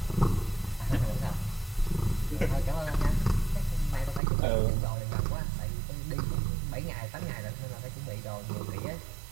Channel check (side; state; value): left; drops out; at 4.2 s